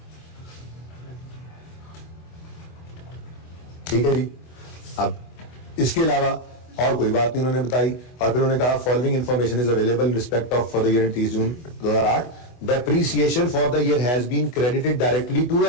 ठीक है जी। अब इसके अलावा और कोई बात नहीं उन्होंने बताई, और फिर उन्होंने कहा following information is available in respect of for the year 30 June 2008, depreciation for the year has been credited directly to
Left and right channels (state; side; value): late; right; 25 ms